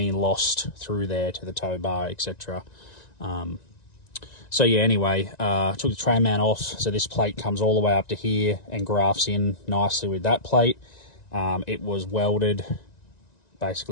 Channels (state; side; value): late; right; 1.9 ms